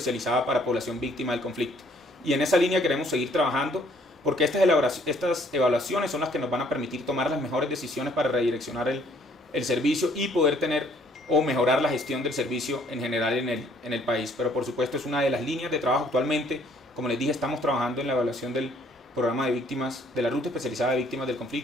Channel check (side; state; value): both; normal; correlation 0.62